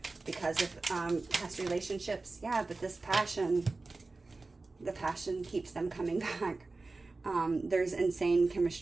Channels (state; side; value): quieter; left; 3.6 dB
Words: because of past relationships. Yeah, but this passion, the passion keeps them coming back. There's insane